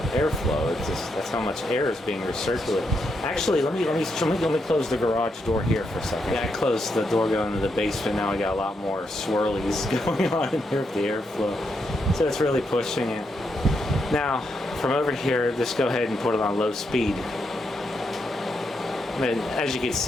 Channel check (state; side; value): normal; both; correlation 0.81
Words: airflow. It's just, that's how much air is being recirculated. Actually, let me close the garage door here for a second. Yeah, I closed the door going to the basement. Now we got a lot more swirlies going on in here with the airflow. So it's really pushing it. Now, from over here, just go ahead and put it on low speed. And as you can